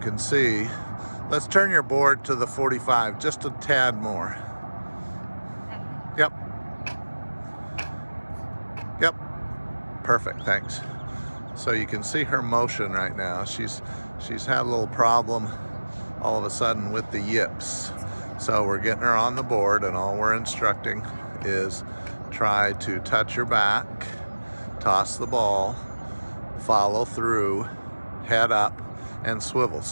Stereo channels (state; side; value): inverted; both; correlation -1.00